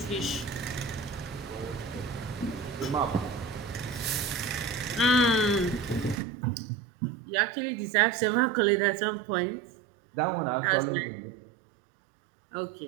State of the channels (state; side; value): drops out; left; at 6.2 s